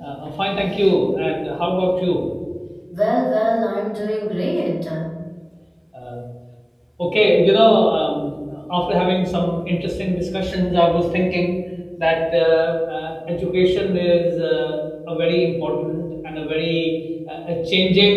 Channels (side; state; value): both; identical; correlation 1.00